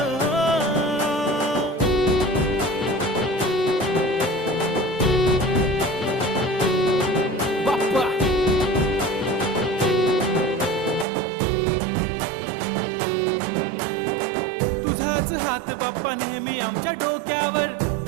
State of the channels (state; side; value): drops out; left; at 11.1 s